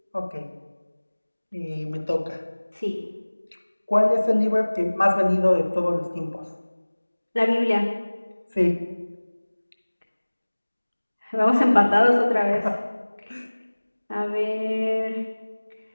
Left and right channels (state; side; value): inverted; both; correlation -1.00